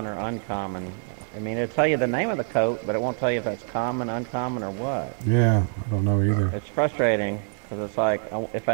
or uncommon. I mean, it'll tell you the name of the coat, but it won't tell you if that's common, uncommon, or what. Yeah, I don't know either. It's frustrating, because it's like, if I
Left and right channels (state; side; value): silent; left; 61 dB below the other